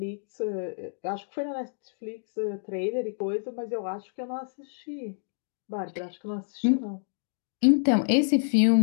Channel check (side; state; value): right; silent; digital silence